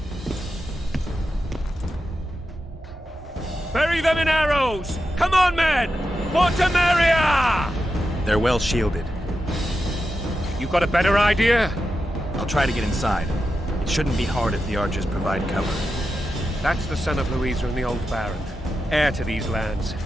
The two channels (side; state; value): both; normal; correlation 0.89